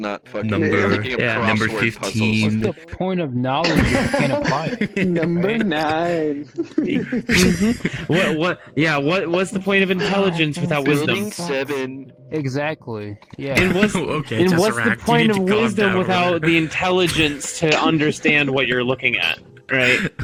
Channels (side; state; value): both; identical; correlation 1.00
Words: not fucking Number- thinking of yeah, number crossword 15. puzzles. What's the point of knowledge if you can't apply it? Number Right? 9. What's the point of intelligence without wisdom? Building 7. Exactly. Yeah. And what's Okay, and what's the Tesseract, you point need of to calm wisdom down over without there. the intelligence to understand what you're looking at, right?